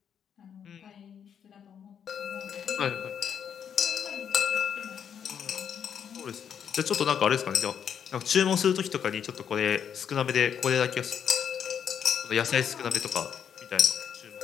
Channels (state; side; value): quieter; right; 8.1 dB